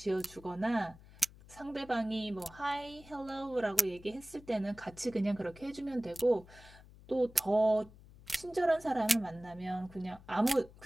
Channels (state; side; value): noise; left; hum, 21 dB below the sound